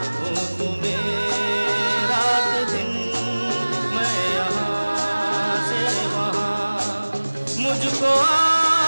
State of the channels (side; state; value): both; inverted; correlation -1.00